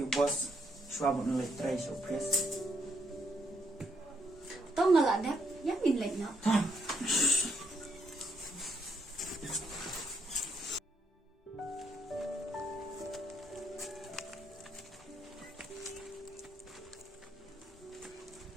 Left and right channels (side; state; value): both; normal; correlation 0.75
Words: boss, suami like try surprise. Tao nggak ada, yang min lek nak.